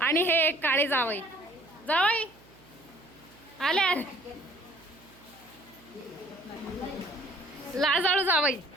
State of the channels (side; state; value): right; noise; hum, 26 dB below the sound